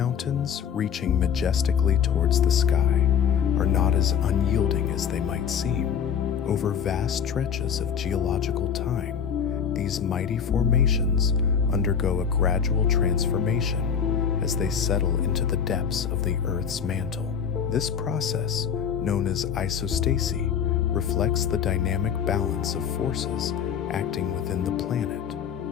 reaching majestically towards the sky, are not as unyielding as they might seem. Over vast stretches of geological time, these mighty formations undergo a gradual transformation as they settle into the depths of the Earth's mantle. This process, known as isostasy, reflects the dynamic balance of forces acting within the planet.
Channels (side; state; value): right; quieter; 7.6 dB